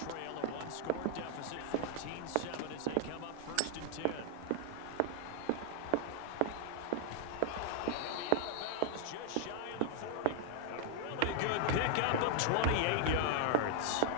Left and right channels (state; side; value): different; both; correlation 0.00